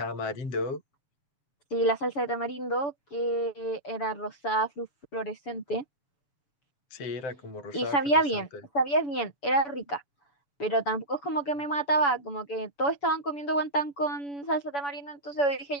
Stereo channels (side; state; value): right; late; 7.0 ms